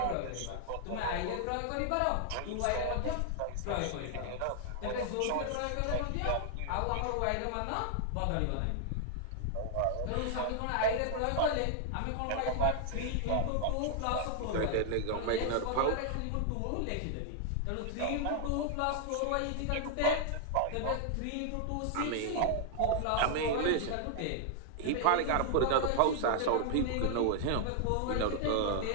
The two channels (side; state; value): both; different; correlation 0.00